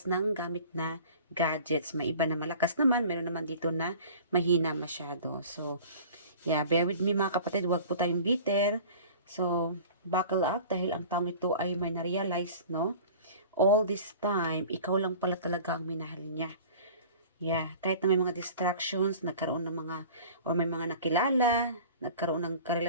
ng gamit na gadgets. May iba na malakas naman, meron naman dito na mahina masyado. So, yeah, bear with me mga kapatid, huwag po tayong bitter. So, buckle up dahil ang taong ito ay may na-realize, no? All this time, ikaw lang pala talaga ang minahal niya. Yeah, kahit na may mga distractions, nagkaroon ng mga, or may mga nakilala, nagkaroon ng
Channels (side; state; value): both; inverted; correlation -0.43